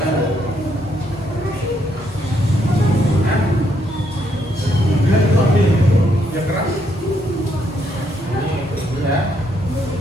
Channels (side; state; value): both; normal; correlation 0.74